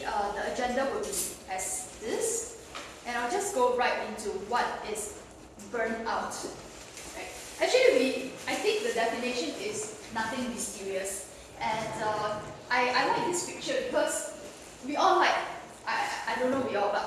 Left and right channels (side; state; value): both; identical; correlation 1.00